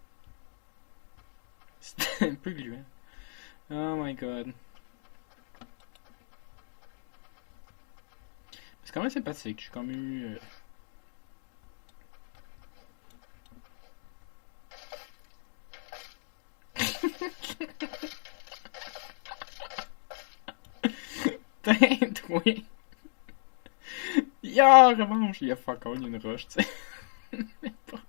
C'était un peu gluant. Oh my god. C'est quand même sympathique. J'ai comme eu. Tête, oui. Ya, revanche. Il y a fuck all, il y a une roche, tu sais.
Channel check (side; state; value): right; silent; digital silence